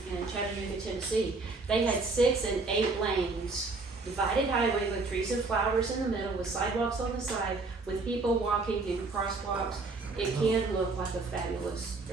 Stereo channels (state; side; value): quieter; left; 3.7 dB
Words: in Chattanooga, Tennessee. They had 6 and 8 lanes, divided highway with trees and flowers in the middle, with sidewalks on the side, with people walking in crosswalks. It can look like a fabulous